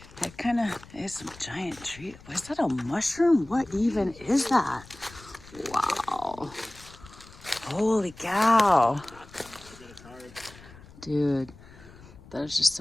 That kind of is some giant tree. Is that a mushroom? What even is that? Wow. Holy cow. Dude, there's just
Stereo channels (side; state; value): left; noise; rumble, 21 dB below the sound